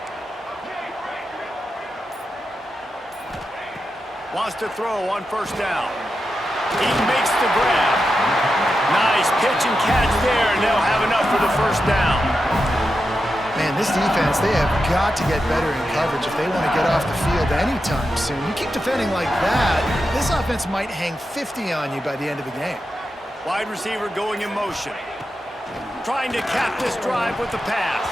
Wants to throw on 1st down. He makes the grab. Nice pitch and catch there, and they'll have enough for the 1st down. Man, this defense, they have got to get better in coverage if they want to get off the field anytime soon. You keep defending like that, this offense might hang 50 on you by the end of the game. Wide receiver going in motion. Trying to cap this drive with the pass.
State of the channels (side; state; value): both; normal; correlation 0.89